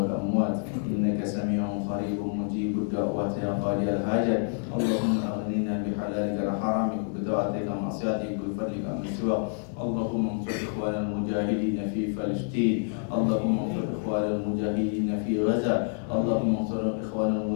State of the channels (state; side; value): silent; right; 59 dB below the other